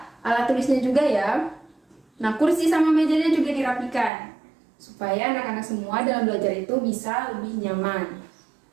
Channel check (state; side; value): drops out; left; at 4.1 s